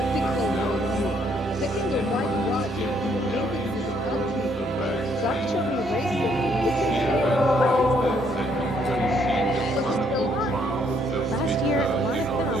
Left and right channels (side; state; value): both; normal; correlation 0.69